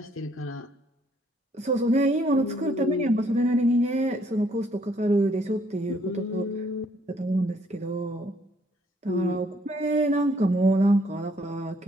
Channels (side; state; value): both; normal; correlation 0.66